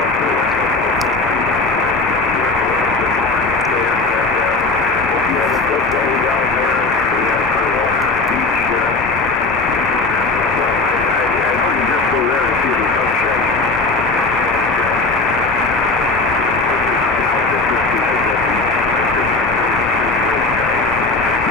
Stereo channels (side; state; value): right; quieter; 3.4 dB